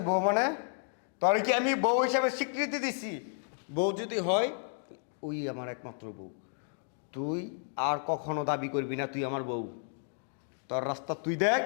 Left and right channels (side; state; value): right; silent; 56 dB below the other